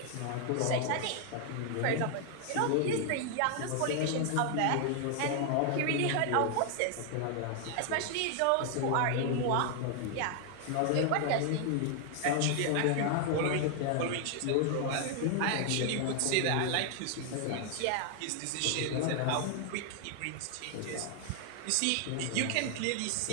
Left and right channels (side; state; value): both; different; correlation 0.00